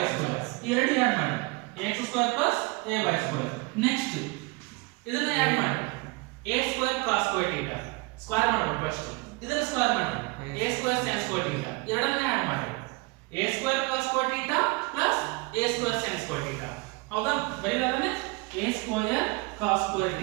ಸ್ಕ್ವೇರ್ ಈ ಎರಡು ಆಡ್ ಮಾಡಿ ax square plus ay square next ಇದನ್ನ ಆಡ್ ಮಾಡಿ a square cos square theta square ಮಾಡಬೇಕು ಫಸ್ಟ್ ಇದನ್ನ ಸ್ಕ್ವೇರ್ ಮಾಡಿ a square sin square theta ಎರಡನ್ನ ಆಡ್ ಮಾಡಿ a square cos square theta plus a square sin square theta ಹೌದಾ ಬರೀಲಾದನೆ a square cos square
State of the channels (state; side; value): quieter; left; 26.4 dB